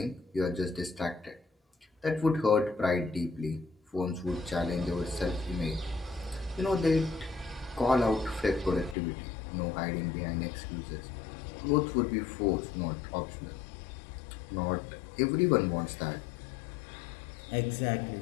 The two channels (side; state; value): right; drops out; at 9.0 s